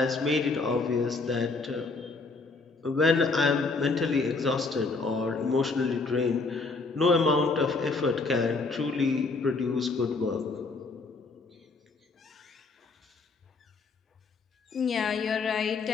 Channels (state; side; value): quieter; right; 3.9 dB